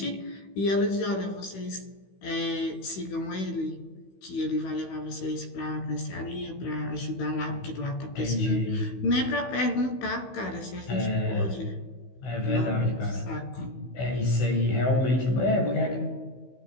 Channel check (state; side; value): late; right; 16 ms